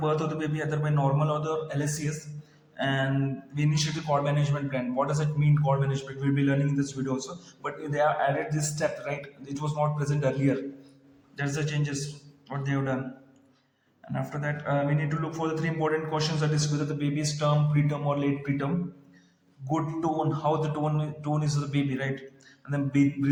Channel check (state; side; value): identical; both; correlation 1.00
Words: of the baby, either by normal or the LSCS, and we initiate the cord management plan. What does it mean, cord management? We'll be learning in this video also. But they have added this step, right? It was not present earlier. That's the changes what they have done. And after that, we need to look for the three important questions, that is whether the baby is term, preterm, or late preterm. Good tone, how the tone is of the baby, right? And then